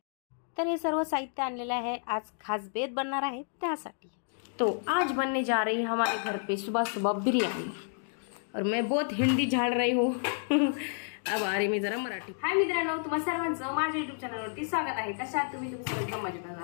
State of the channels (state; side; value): silent; right; digital silence